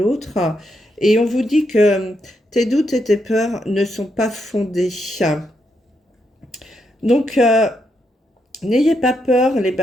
Et on vous dit que tes doutes et tes peurs ne sont pas fondés. Donc, n'ayez pas peur, les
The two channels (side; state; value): both; normal; correlation 0.80